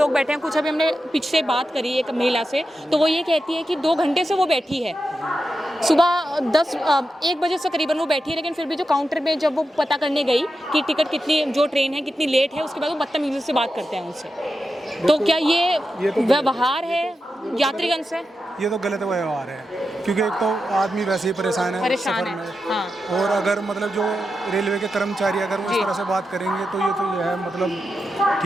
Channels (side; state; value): both; normal; correlation 0.89